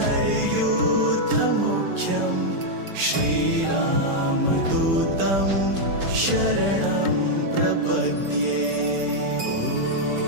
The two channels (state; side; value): late; left; 5.2 ms